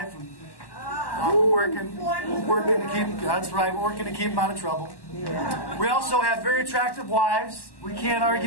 And we're working to keep... That's right, we're working to keep them out of trouble. We also have very attractive wives. We can't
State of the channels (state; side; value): late; right; 1.1 ms